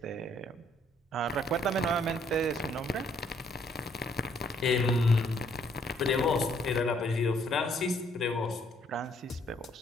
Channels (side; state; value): both; normal; correlation 0.66